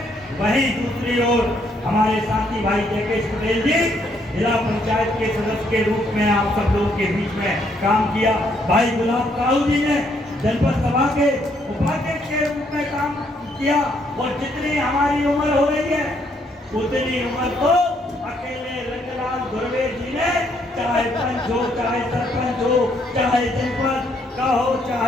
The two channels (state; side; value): normal; both; correlation 0.71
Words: वहीं दूसरी ओर हमारे साथी भाई जयकेश पटेल जी जिला पंचायत के सदस्य के रूप में आप सब लोगों के बीच में काम किया। भाई गुलाब काऊ जी ने जनपद सभा के उपाध्यक्ष के रूप में काम किया और जितनी हमारी उम्र हो रही है उतनी उम्र तो अकेले रंगलाल धुर्वे जी ने, चाहे पंच हो, चाहे सरपंच हो, चाहे जनपद का हो,